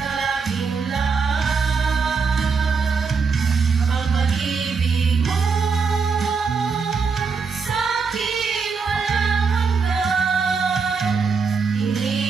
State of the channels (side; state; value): left; quieter; 5.2 dB